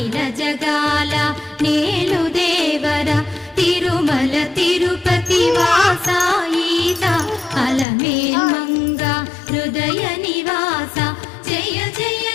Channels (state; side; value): drops out; right; at 7.9 s